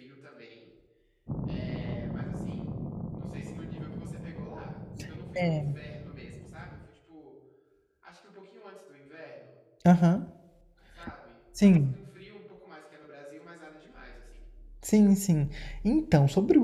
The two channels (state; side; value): identical; both; correlation 1.00